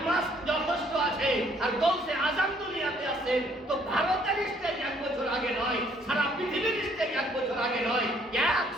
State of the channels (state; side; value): normal; both; correlation 0.64